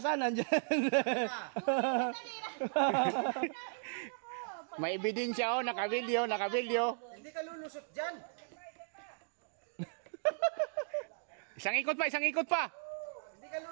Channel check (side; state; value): left; silent; digital silence